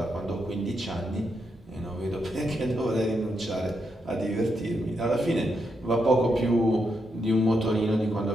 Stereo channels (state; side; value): normal; both; correlation 0.82